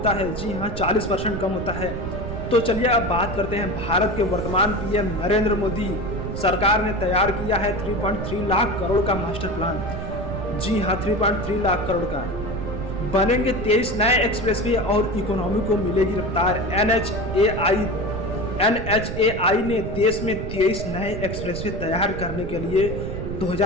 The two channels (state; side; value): noise; right; rumble, 6 dB below the sound